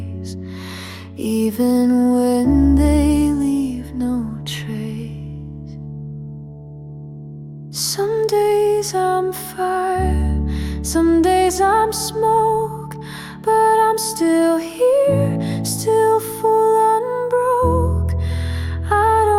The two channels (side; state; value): both; identical; correlation 1.00